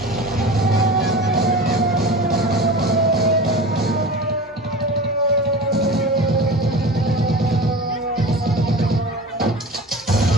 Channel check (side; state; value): both; normal; correlation 0.33